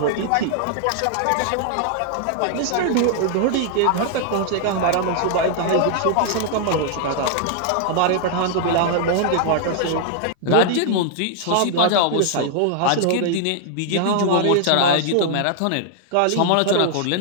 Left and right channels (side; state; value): both; different; correlation 0.00